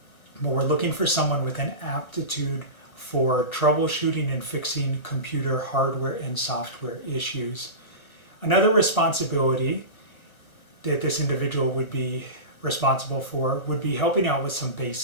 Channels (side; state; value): right; late; 1.2 ms